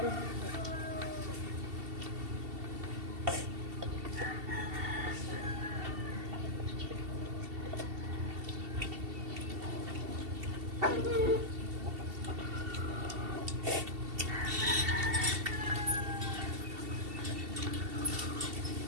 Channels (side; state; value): left; late; 2.7 ms